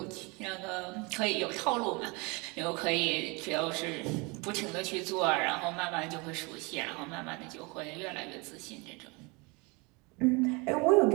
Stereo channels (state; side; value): quieter; left; 28.0 dB